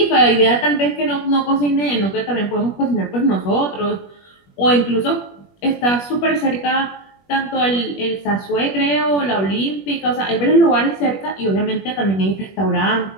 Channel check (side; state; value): right; late; 21 ms